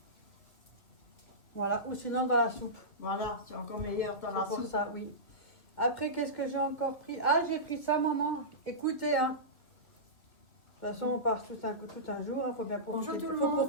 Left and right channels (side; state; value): right; late; 2.5 ms